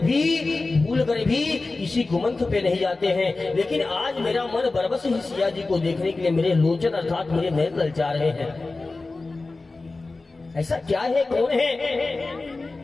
भूल कर भी किसी कुमंथ पे नहीं जाते हैं। लेकिन आज मेरा मन बरबस ही सिया जी को देखने के लिए मेरे लोचन अर्थात मेरे नयन ललचा रहे हैं। ऐसा क्या है, कौन है?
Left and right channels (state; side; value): quieter; right; 3.5 dB